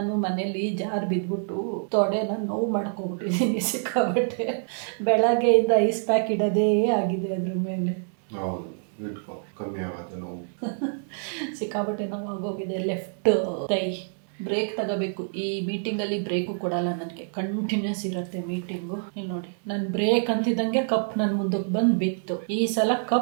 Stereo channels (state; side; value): silent; left; 61 dB below the other